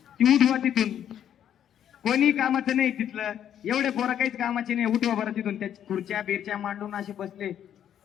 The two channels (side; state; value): right; quieter; 9.9 dB